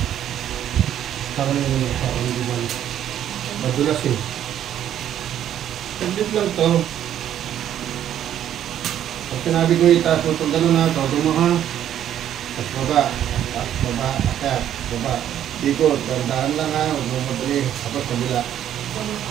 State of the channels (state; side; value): quieter; left; 10.7 dB